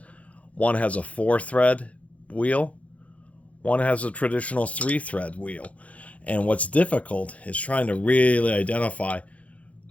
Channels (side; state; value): right; late; 0.066 ms